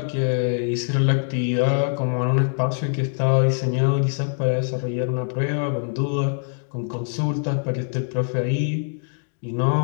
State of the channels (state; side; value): silent; right; digital silence